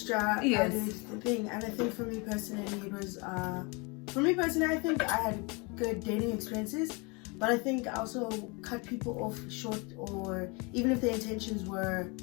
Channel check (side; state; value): right; quieter; 29.5 dB